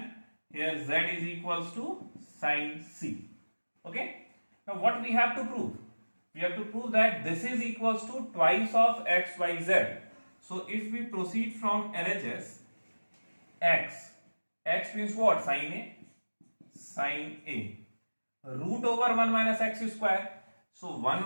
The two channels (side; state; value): both; inverted; correlation -1.00